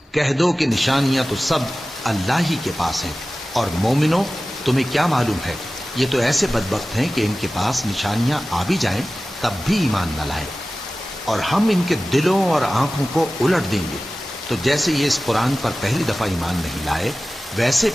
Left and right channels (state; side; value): normal; both; correlation 0.96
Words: کہہ دو کہ نشانیاں تو سب اللہ ہی کے پاس ہیں، اور مومنوں تمہیں کیا معلوم ہے، یہ تو ایسے بدبخت ہیں کہ ان کے پاس نشانیاں آ بھی جائیں تب بھی ایمان نہ لائیں۔ اور ہم ان کے دلوں اور آنکھوں کو الٹ دیں گے، تو جیسے یہ اس قرآن پر پہلی دفعہ ایمان نہیں لائے ویسے